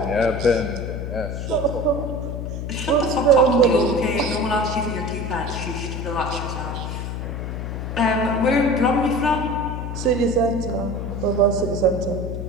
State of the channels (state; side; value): noise; left; hum, 5 dB below the sound